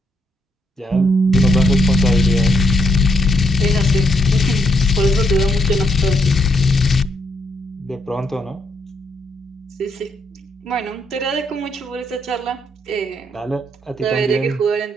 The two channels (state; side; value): normal; both; correlation 0.76